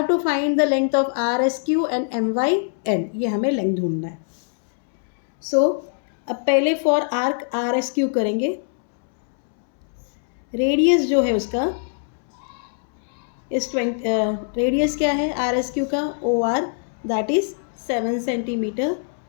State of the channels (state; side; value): silent; right; 64 dB below the other